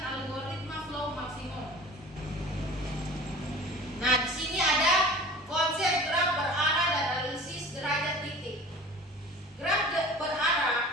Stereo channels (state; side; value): normal; both; correlation 0.41